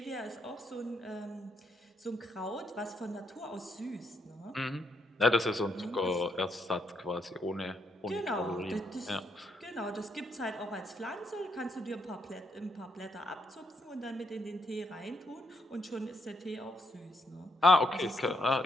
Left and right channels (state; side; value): normal; both; correlation 0.77